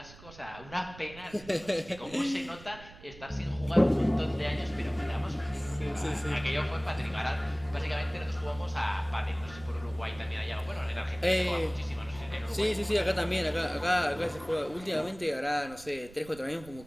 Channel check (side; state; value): right; noise; rumble, 19 dB below the sound